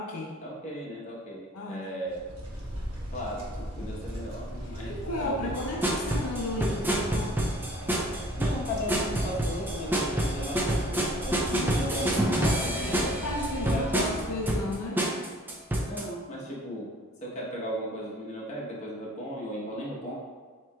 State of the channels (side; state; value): both; normal; correlation 0.54